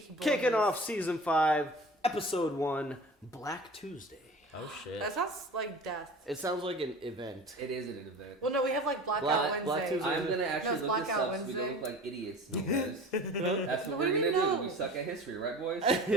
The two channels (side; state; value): both; normal; correlation 0.39